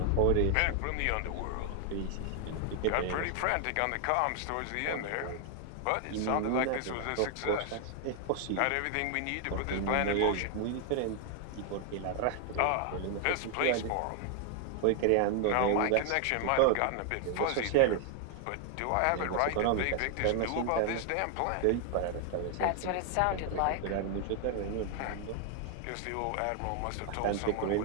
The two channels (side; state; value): both; different; correlation 0.00